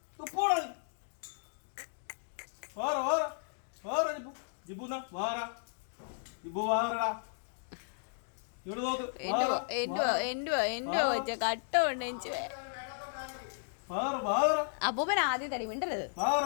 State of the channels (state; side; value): silent; right; digital silence